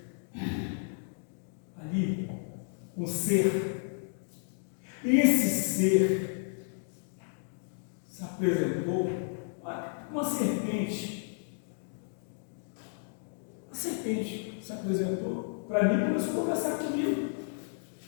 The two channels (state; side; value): silent; right; digital silence